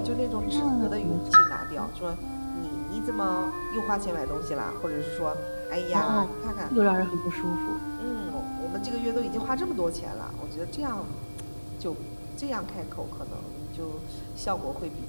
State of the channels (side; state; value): both; inverted; correlation -1.00